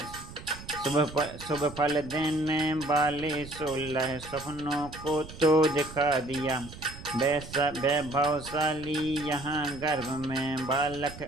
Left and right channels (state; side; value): noise; right; rumble, 15 dB below the sound